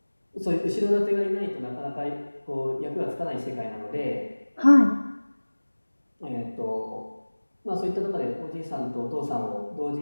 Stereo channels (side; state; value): both; inverted; correlation -1.00